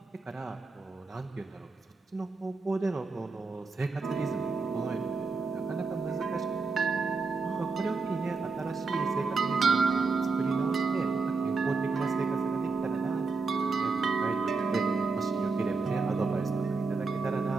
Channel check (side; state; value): left; quieter; 4.1 dB